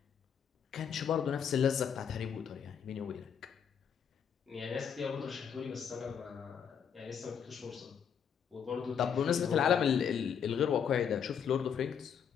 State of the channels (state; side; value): quieter; right; 7.7 dB